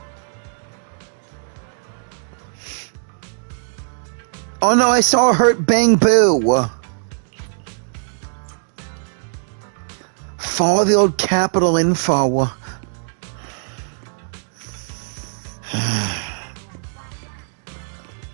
Oh no, I saw Hurt Bang Boo. Follow the old capital info.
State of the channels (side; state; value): left; silent; digital silence